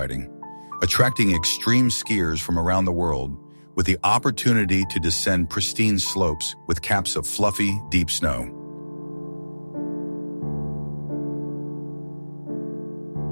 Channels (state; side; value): inverted; both; correlation -1.00